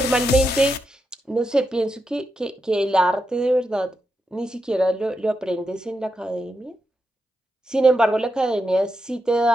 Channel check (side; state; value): both; normal; correlation 0.86